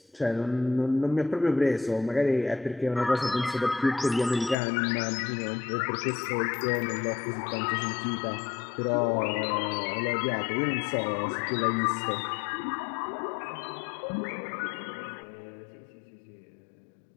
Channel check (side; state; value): right; drops out; at 4.5 s